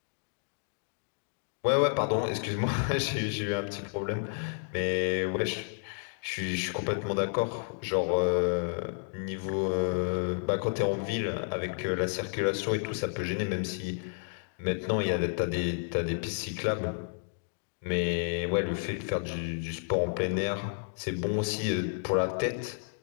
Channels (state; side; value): silent; right; digital silence